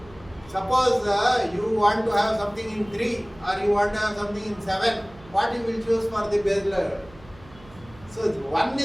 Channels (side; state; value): right; noise; hum, 22 dB below the sound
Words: suppose you want to have something in 3 or you want to have something in 7, what you will choose for the bass layer? So one